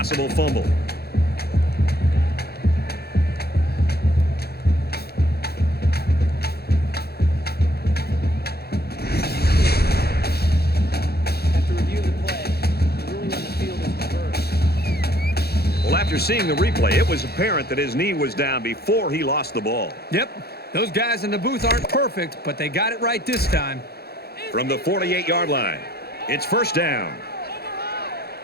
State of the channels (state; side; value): late; right; 0.46 ms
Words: fumble. After reviewing the play, the ruling on the field is reversed. Well, after seeing the replay, it was apparent that his knee was down before he lost the ball. Yep. Those guys in the booth aren't perfect, but they got it right this time. From the 48-yard line, it's first down.